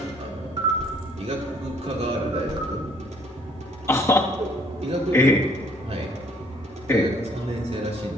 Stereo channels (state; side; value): normal; both; correlation 0.61